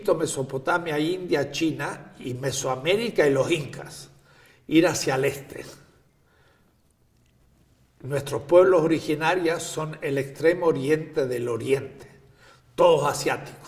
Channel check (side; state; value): both; identical; correlation 1.00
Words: Mesopotamia, India, China y Mesoamérica y los incas, ir hacia el este. Nuestros pueblos originarios son el extremo oriente del oriente, todos